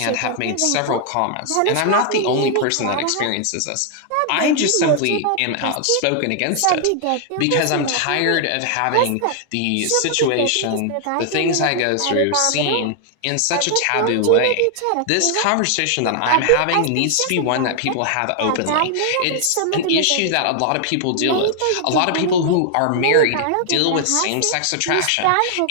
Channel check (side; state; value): both; different; correlation 0.00